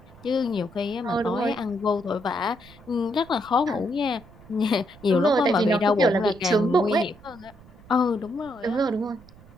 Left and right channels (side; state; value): right; noise; rumble, 23 dB below the sound